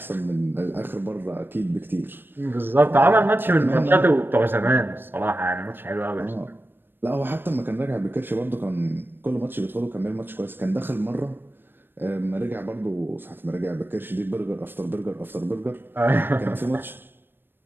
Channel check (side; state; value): left; late; 0.097 ms